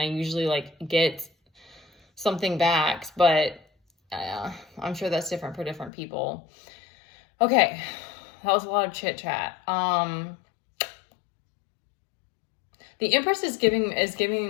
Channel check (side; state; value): right; drops out; at 5.9 s